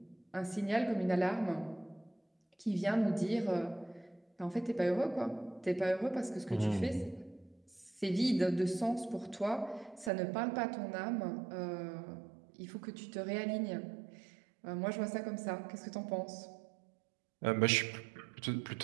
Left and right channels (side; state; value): left; drops out; at 10.1 s